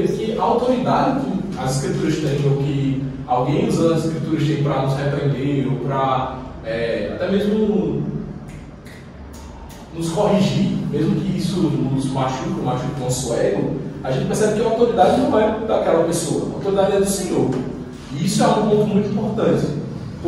que a autoridade que as escrituras têm, ou que alguém usando as escrituras tem para nos repreender, ou para até mesmo nos corrigir, mesmo que isso nos machuque o nosso ego, a gente percebe que a autoridade não é daquela pessoa, a autoridade é do Senhor. E isso é um ponto muito importante,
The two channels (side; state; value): both; identical; correlation 1.00